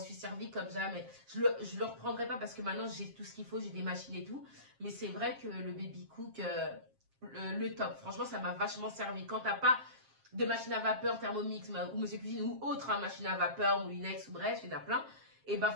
servi comme jamais. Je le reprendrai pas parce que maintenant j'ai tout ce qu'il faut, j'ai des machines et tout. Mais c'est vrai que le Baby Cook, le top. Franchement, ça m'a vachement servi. Quand t'as pas de machine à vapeur, Thermomix ou Monsieur Cuisine ou autre, hein, machine à vapeur, Moulinex ou bref, il y en a plein. Et ben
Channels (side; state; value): left; late; 7.5 ms